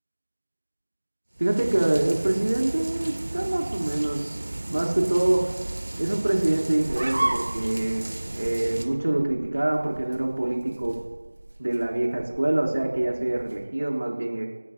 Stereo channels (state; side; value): inverted; both; correlation -1.00